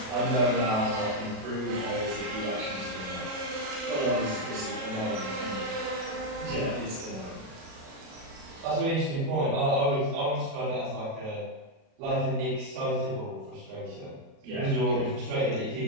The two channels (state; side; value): late; left; 37 ms